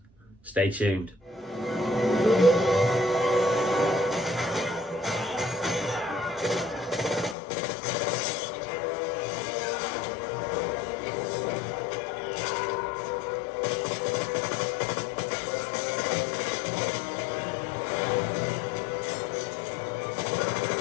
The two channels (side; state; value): right; drops out; at 7.4 s